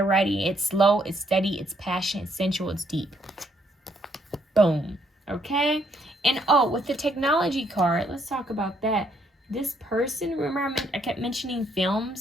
ready. It's slow, it's steady, it's passionate, it's sensual, it's deep. Boom. Okay? And oh, with the technology card, let's talk about that. This person, remember I kept mentioning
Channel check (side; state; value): both; normal; correlation 0.71